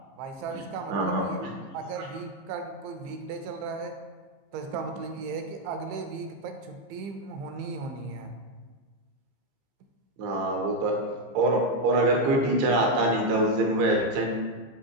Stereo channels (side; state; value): left; late; 15 ms